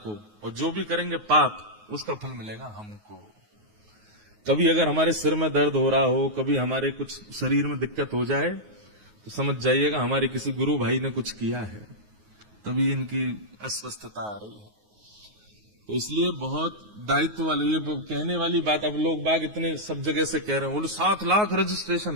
और जो भी करेंगे पाप, उसका फल मिलेगा हमको। कभी अगर हमारे सिर में दर्द हो रहा हो, कभी हमारे कुछ शरीर में दिक्कत हो जाए, तो समझ जाइएगा हमारे किसी गुरु भाई ने कुछ किया है, तभी इनकी अस्वस्थता आ रही है। तो इसलिए बहुत दायित्व वाली, ये कहने वाली बात अब लोग बाग इतने सब जगह से कह रहे हैं, बोले 7 लाख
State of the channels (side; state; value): left; late; 9.5 ms